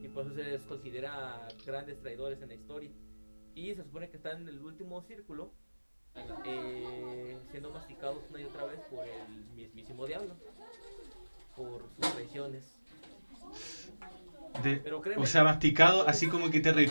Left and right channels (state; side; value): inverted; both; correlation -1.00